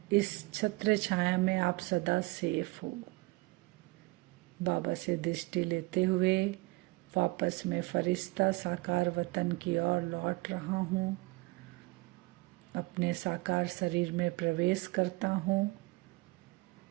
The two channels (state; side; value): quieter; left; 23.7 dB